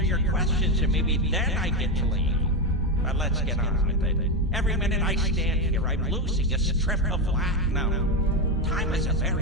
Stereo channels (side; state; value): both; normal; correlation 0.12